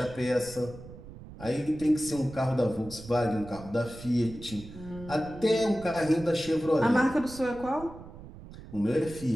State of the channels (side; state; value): right; noise; rumble, 15 dB below the sound